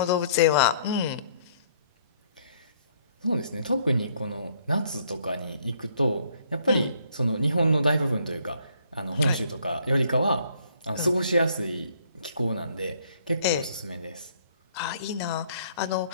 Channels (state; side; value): inverted; both; correlation -0.64